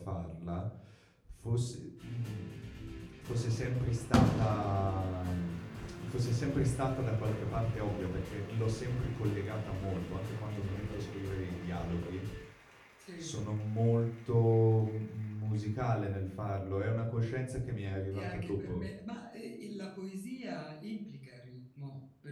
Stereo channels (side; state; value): both; identical; correlation 1.00